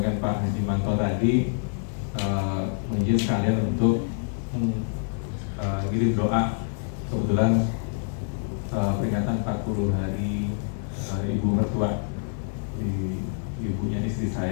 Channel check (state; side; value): silent; right; digital silence